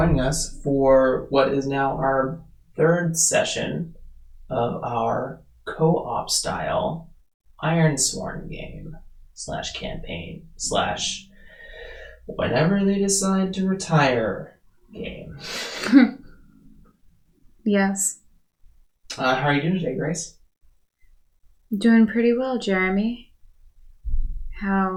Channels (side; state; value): both; identical; correlation 1.00